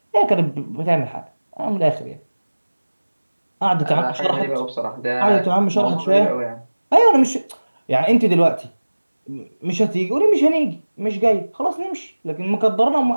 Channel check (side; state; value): both; inverted; correlation -1.00